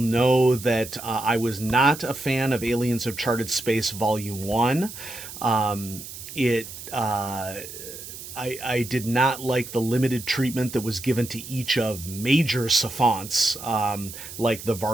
know that I was not a fan of Aliens of Charted Space Volume 1. I did not like the limited treatment that was given to each of major sophonts, like the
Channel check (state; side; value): noise; right; hiss, 12 dB below the sound